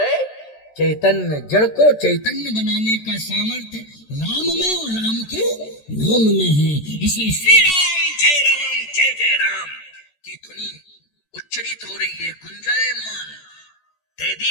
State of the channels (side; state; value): right; late; 14 ms